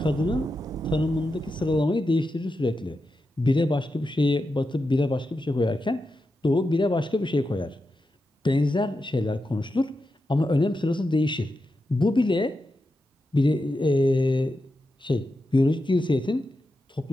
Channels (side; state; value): both; normal; correlation 0.89